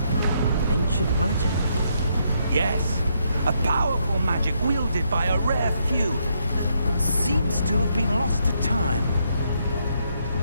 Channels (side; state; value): both; inverted; correlation -0.76